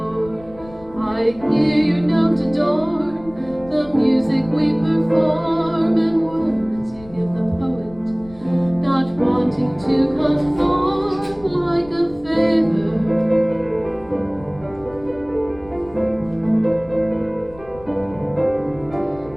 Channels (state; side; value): noise; left; rumble, 21 dB below the sound